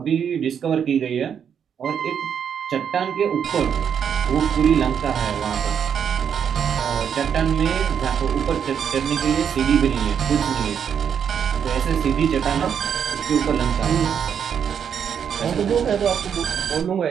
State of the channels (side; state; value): left; quieter; 7.9 dB